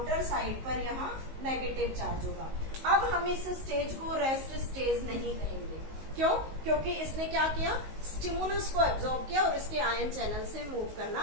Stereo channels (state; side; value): late; left; 19 ms